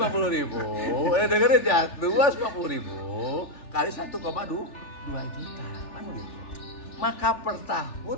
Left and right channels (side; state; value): right; late; 3.4 ms